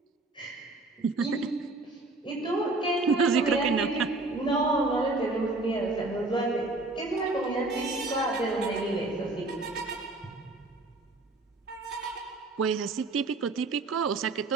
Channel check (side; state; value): left; quieter; 3.2 dB